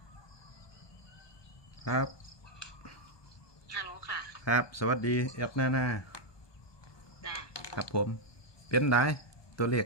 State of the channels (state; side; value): late; right; 1.2 ms